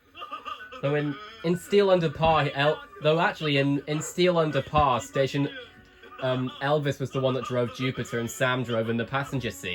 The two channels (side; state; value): both; identical; correlation 1.00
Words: Though in Steel Under Par, though actually in Steel Under Par, station Elvis was the one that drove Jupiter and Sam drove in the passenger